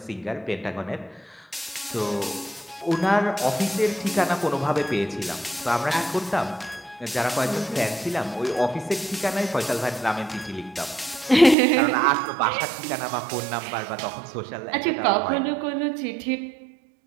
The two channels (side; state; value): left; drops out; at 11.6 s